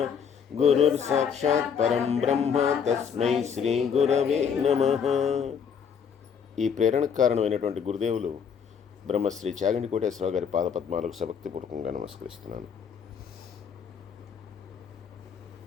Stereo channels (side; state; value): right; quieter; 7.0 dB